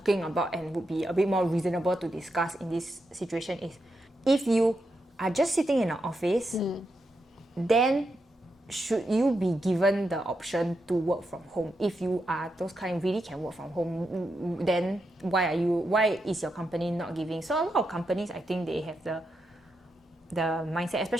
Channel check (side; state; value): both; normal; correlation 0.85